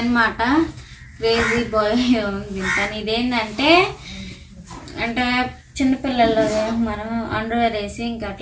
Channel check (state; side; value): identical; both; correlation 1.00